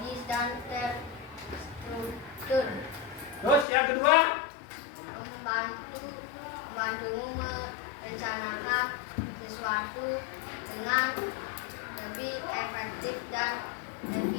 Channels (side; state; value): right; drops out; at 3.7 s